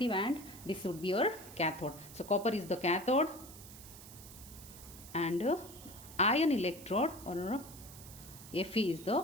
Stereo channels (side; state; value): right; noise; hiss, 16 dB below the sound